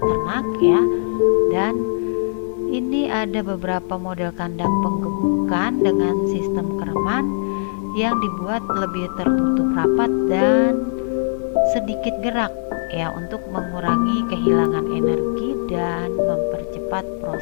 ternak ya. Dan ini ada beberapa model kandang penggemukan dengan sistem kereman yang dibuat lebih tertutup rapat dan sedikit gerak ya, untuk mengurangi kehilangan energi dan mempercepat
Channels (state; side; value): silent; right; digital silence